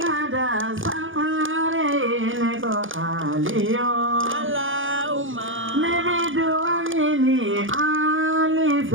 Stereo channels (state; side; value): late; left; 0.58 ms